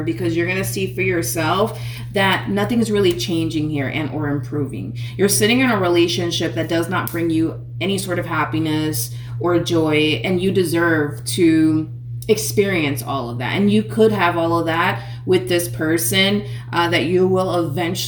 because you're going to see for yourself that nothing's really changing here and or improving. You're sitting in a relationship that does not bring you any sort of happiness or joy, and you deserve to experience all of that. And you could have all of that with this person that you will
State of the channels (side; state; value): both; identical; correlation 1.00